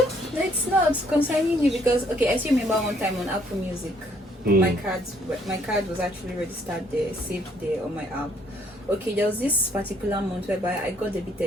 it's not concerning you, because I still remember one time on Apple Music, my card was actually registered there, saved there on my app. Okay, there was this particular month whereby I got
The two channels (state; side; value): normal; both; correlation 0.66